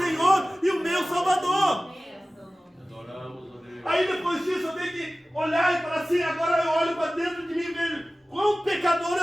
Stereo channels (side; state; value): both; normal; correlation 0.97